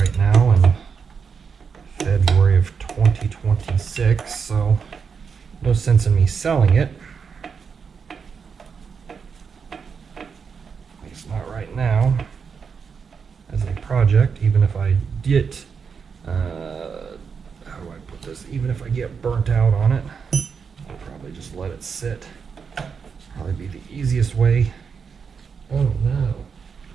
now in February of 2026, so no sense in me selling it. At least not right now. As a project, even if I get how do I put this? Even if I get burnt out on it, I'll probably just let it sit. Probably be the easiest way. Oh no,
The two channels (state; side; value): quieter; left; 6.0 dB